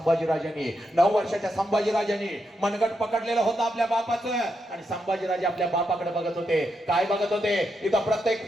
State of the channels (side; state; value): both; normal; correlation 0.83